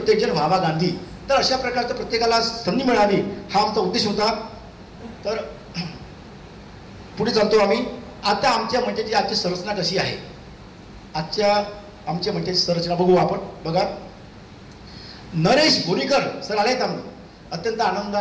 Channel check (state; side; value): identical; both; correlation 1.00